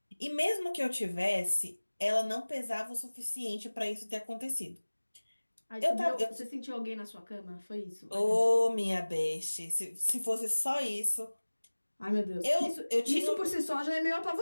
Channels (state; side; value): inverted; both; correlation -1.00